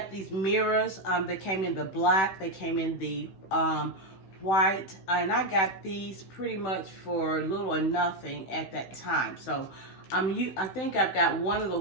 these mirrors. They came in the black. They came in the white. And I got these pretty much for little or nothing at that time. So I think I've got one of the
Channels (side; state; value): right; late; 16 ms